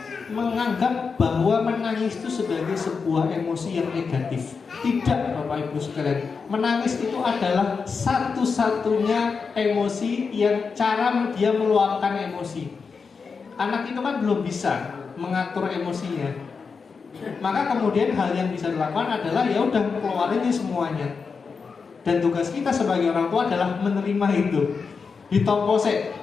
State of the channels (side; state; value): right; quieter; 5.2 dB